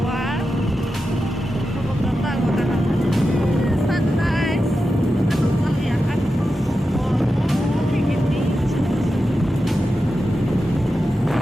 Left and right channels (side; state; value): both; normal; correlation 0.90